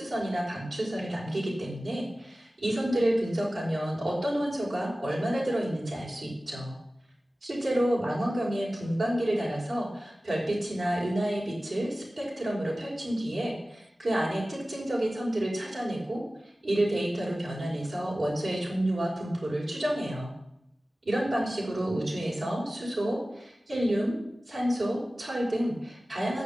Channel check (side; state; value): both; normal; correlation 0.96